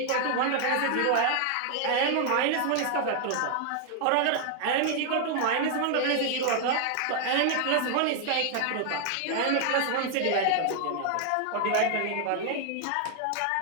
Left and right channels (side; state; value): both; different; correlation 0.00